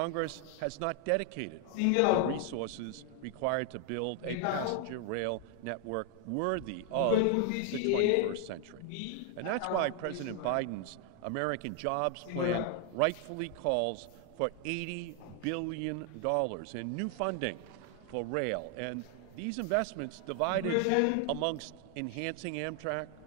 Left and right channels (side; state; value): both; different; correlation 0.00